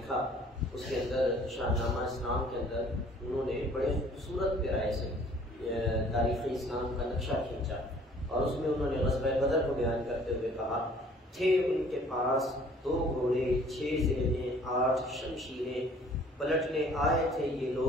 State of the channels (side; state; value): both; normal; correlation 0.55